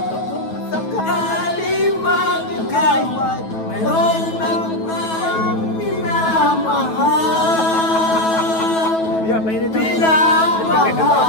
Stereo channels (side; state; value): right; late; 9.2 ms